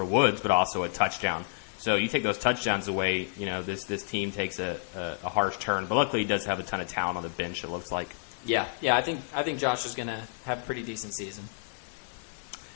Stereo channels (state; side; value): silent; right; 58 dB below the other